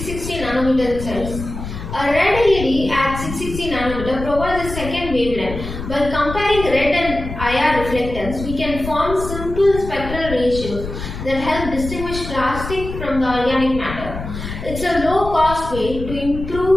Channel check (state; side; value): noise; left; rumble, 8 dB below the sound